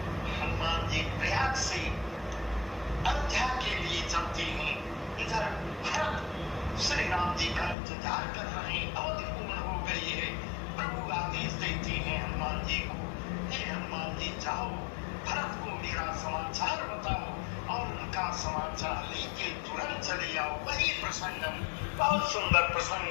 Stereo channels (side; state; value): right; drops out; at 7.8 s